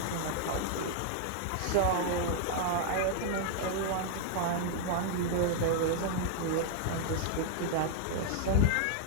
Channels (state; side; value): different; both; correlation 0.00